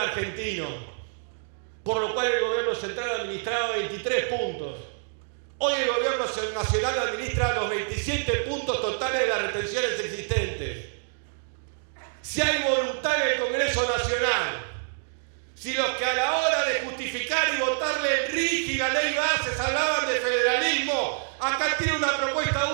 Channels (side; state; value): left; silent; digital silence